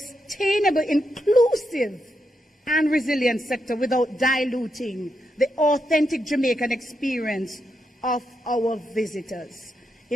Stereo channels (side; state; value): both; normal; correlation 0.83